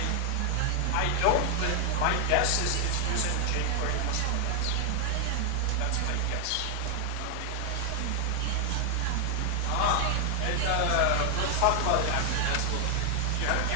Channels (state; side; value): different; both; correlation 0.00